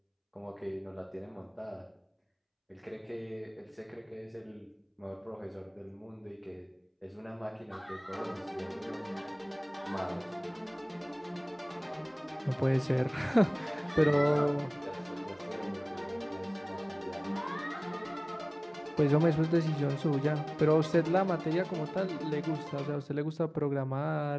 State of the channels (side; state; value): both; identical; correlation 1.00